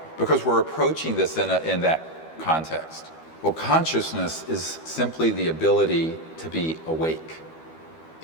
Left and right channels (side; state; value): right; late; 12 ms